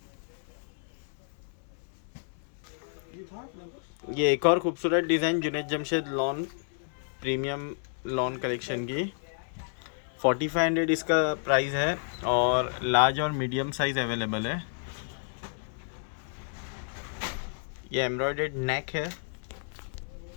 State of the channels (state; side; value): silent; right; 57 dB below the other